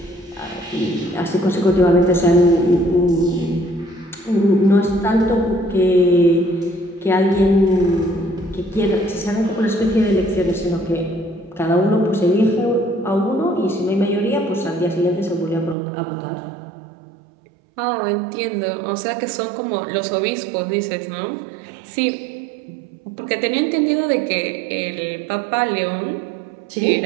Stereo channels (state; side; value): drops out; left; at 15.8 s